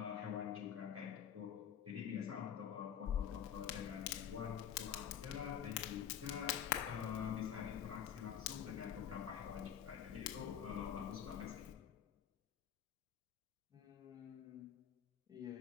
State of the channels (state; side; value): quieter; right; 9.2 dB